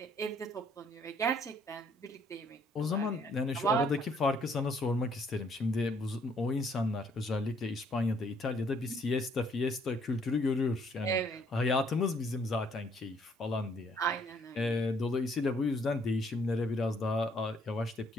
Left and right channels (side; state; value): both; normal; correlation 0.65